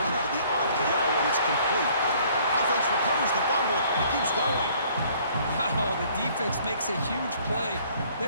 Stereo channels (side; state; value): both; inverted; correlation -0.59